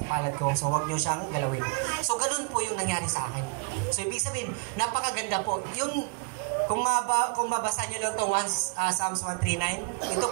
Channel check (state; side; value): quieter; left; 32.5 dB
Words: palad ko, so wag nyo siyang galawin. So ganun po yung nangyari sa akin. So ibig sabihin, napakaganda po. Yung kung mabasa nyo lang ito Psalms 139, ito